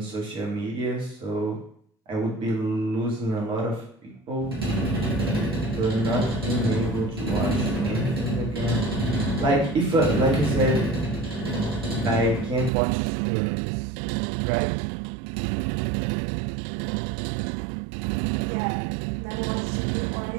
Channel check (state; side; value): drops out; left; at 12.7 s